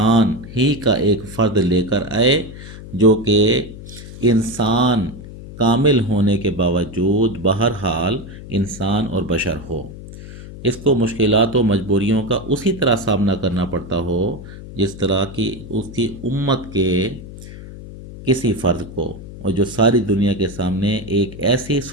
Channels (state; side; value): noise; left; hum, 14 dB below the sound